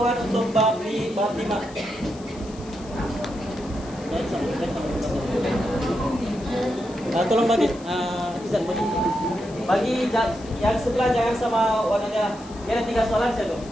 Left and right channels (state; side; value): noise; left; hiss, 21 dB below the sound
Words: untuk bab 5. Tolong bagi Izan bagi yang sebelah jangan sama warna merah. Dia ada 3 soalan saya tu.